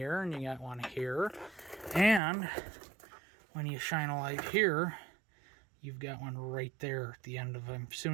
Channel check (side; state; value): left; drops out; at 2.2 s